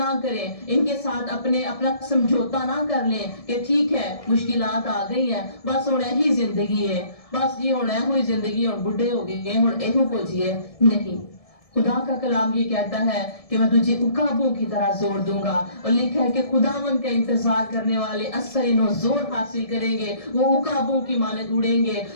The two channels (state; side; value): late; right; 1.7 ms